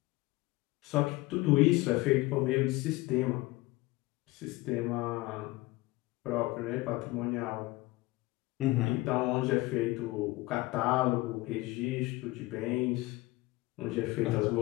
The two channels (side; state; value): right; quieter; 20.5 dB